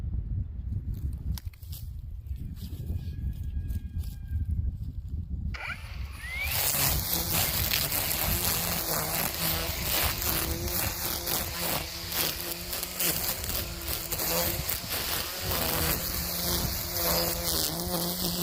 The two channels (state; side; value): identical; both; correlation 1.00